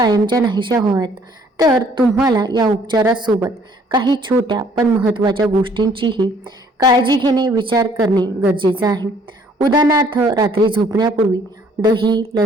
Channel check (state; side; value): normal; both; correlation 0.61